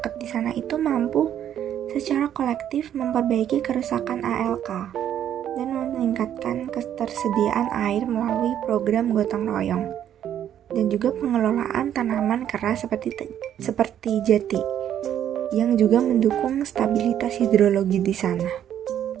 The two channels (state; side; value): quieter; left; 10.3 dB